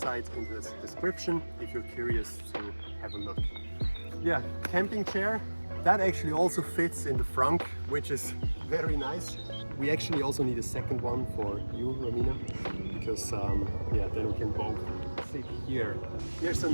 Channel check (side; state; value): both; inverted; correlation -1.00